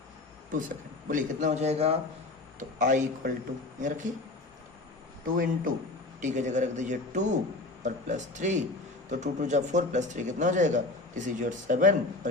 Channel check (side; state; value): right; quieter; 3.0 dB